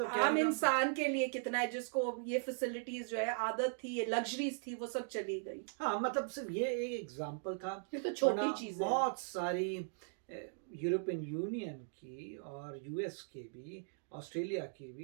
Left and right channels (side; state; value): left; silent; digital silence